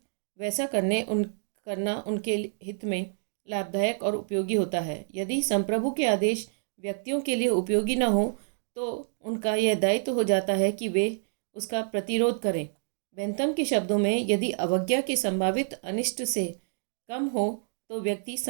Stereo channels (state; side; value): silent; left; digital silence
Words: वैसा करना उनके हित में लाभदायक और उपयोगी होता है। यदि संप्रभु के आदेश व्यक्तियों के लिए उपयोगी न हो तो उनका यह दायित्व हो जाता है कि वे उसका प्रतिरोध करें। बेंथम के शब्दों में यदि अवज्ञा के संभावित अनिष्ट से कम हो तो व्यक्ति